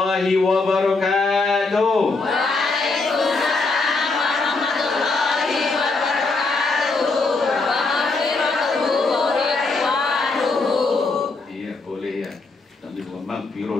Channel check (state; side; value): quieter; right; 3.7 dB